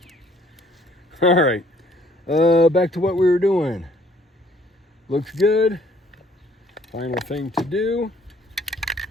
All right, back to what we were doing. Looks good. Final thing to do.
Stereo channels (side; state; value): both; normal; correlation 0.61